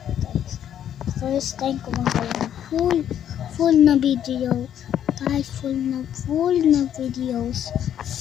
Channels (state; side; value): quieter; right; 10.0 dB